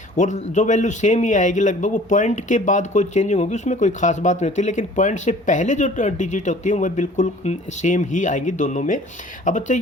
और जो वैल्यू सेम ही आएगी लगभग, वो पॉइंट के बाद कोई चेंजिंग होगी, उसमें कोई खास बात नहीं होती। लेकिन पॉइंट से पहले जो डिजिट होती है वह बिल्कुल सेम ही आएंगी दोनों में। अब बच्चे,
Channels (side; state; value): both; normal; correlation 0.50